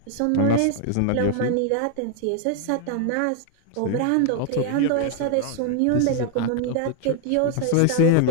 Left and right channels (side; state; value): both; different; correlation 0.00